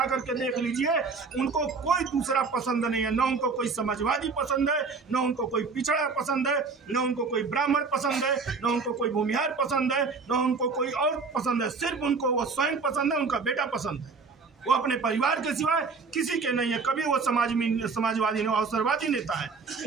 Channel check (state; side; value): quieter; left; 4.7 dB